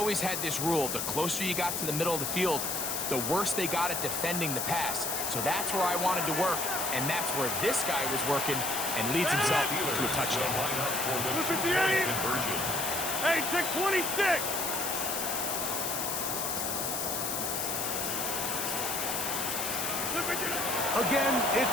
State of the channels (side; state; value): left; noise; hiss, 1 dB below the sound